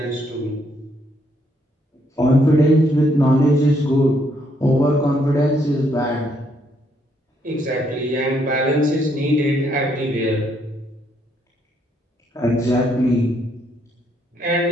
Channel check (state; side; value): normal; both; correlation 0.72